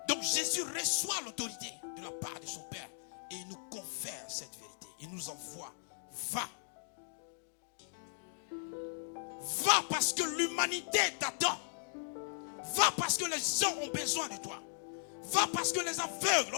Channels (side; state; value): right; silent; digital silence